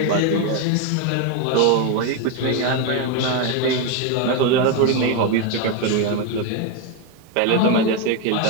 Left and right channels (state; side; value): different; both; correlation 0.02